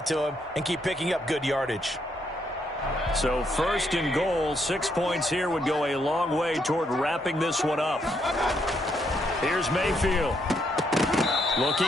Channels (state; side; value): normal; both; correlation 0.75